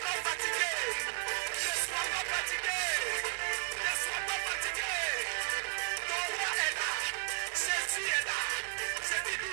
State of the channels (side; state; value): left; silent; digital silence